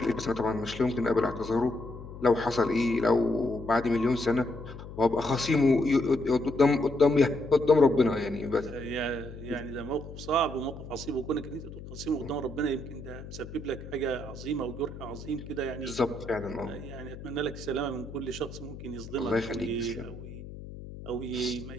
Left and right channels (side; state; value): left; noise; hum, 13 dB below the sound